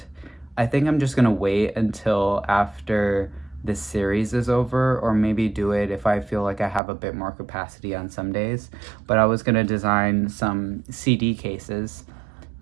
I think I'm just gonna wait until after this series is over, or maybe do it if I feel like I have a bit more capacity on some days. But I was gonna design some CD cases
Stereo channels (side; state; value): left; drops out; at 6.8 s